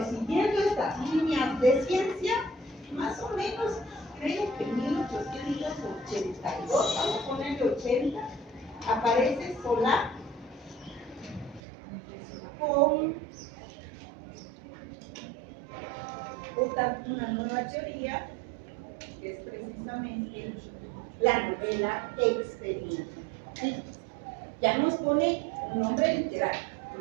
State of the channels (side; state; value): left; drops out; at 11.6 s